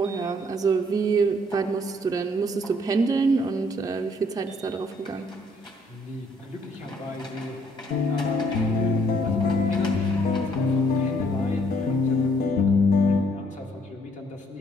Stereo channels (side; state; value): both; normal; correlation 0.66